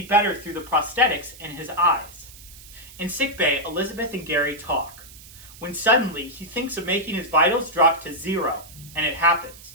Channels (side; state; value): right; noise; hiss, 19 dB below the sound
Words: better through the prosthetics in his eyes. In sickbay, Elizabeth and Gary talk, when suddenly he thinks of making his vitals drop to 0, and it happens.